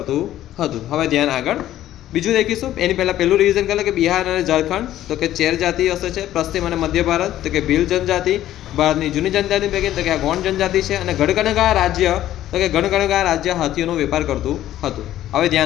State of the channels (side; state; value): right; quieter; 13.0 dB